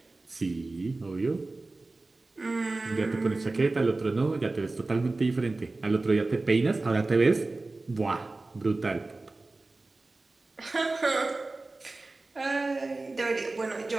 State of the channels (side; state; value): left; quieter; 3.3 dB